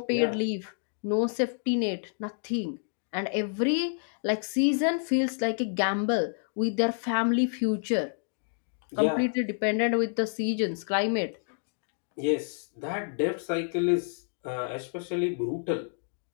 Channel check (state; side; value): silent; right; digital silence